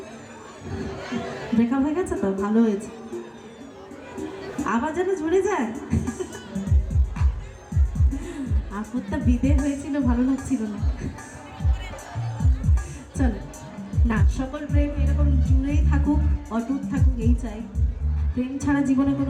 ব্রেকআপ হয়ে গেছে তো ভালো হয়েছে, আবার যেন জুড়ে যায়। আপদটা বিদে হয়েছিল, ভালো লাগছিল না। চলো না, সকল প্রেম এরকম জুড়েই থাকুক, অটুট থাকুক, এই চাই। প্রেম ছাড়া জীবনে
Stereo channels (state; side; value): identical; both; correlation 1.00